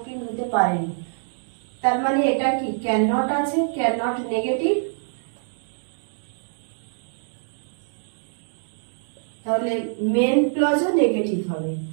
হতে পারেনি। তার মানে এটা কি ক্যান নট আছে, ক্যান নট নেগেটিভ, তাহলে মেন ক্লজও নেগেটিভ হবে।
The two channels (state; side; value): silent; left; digital silence